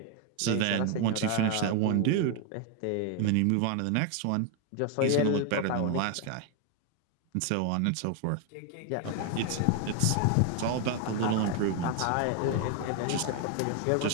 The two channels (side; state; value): both; different; correlation 0.01